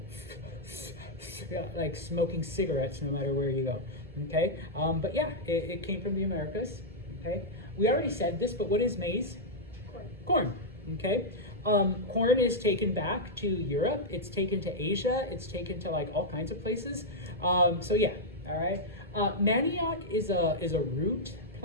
like smoking cigarettes no matter where you go, okay? But yeah, it came from the Americas, okay? We already said this, but what is maize? Corn, okay? Corn is taken back to Europe. It's taken to Asia. It's taken to like all kinds of places. So yeah, all right. Manioc is a root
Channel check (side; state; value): both; normal; correlation -0.06